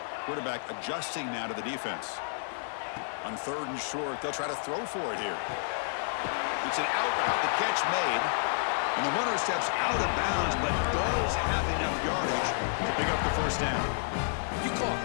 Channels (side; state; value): right; silent; 58 dB below the other